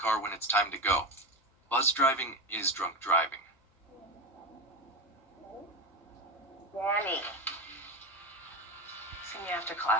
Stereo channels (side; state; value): both; normal; correlation 0.20